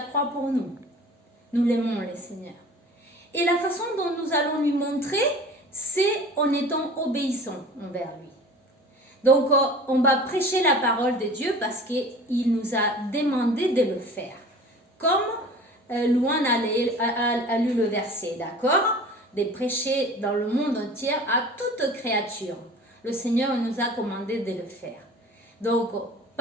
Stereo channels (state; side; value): normal; both; correlation 0.42